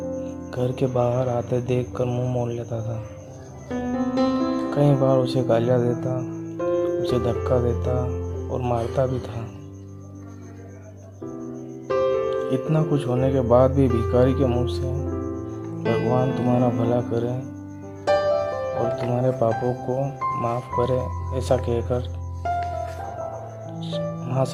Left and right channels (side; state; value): both; identical; correlation 1.00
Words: घर के बाहर आते देखकर मुंह मोड़ लेता था। कई बार उसे गालियां देता, उसे धक्का देता और मारता भी था। इतना कुछ होने के बाद भी भिखारी के मुंह से भगवान तुम्हारा भला करे और तुम्हारे पापों को माफ़ करे ऐसा कहकर वहाँ